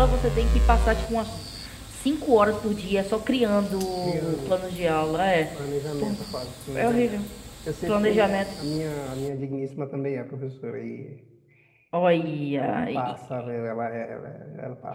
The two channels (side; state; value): both; identical; correlation 1.00